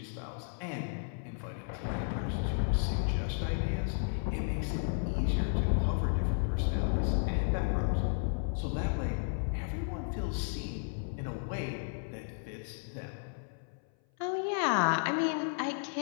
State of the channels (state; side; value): silent; right; 56 dB below the other